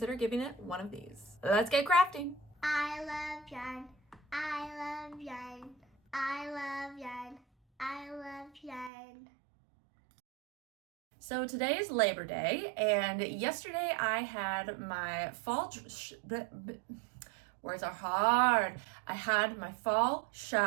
giving it one of these. Let's get crafting. I love yarn. I love yarn. I love yarn. I love yarn. So today is Labor Day, and yesterday I had my fall words are hard. I had my fall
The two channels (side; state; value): left; drops out; at 8.9 s